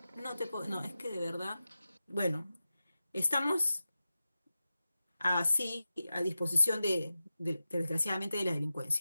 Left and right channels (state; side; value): inverted; both; correlation -0.93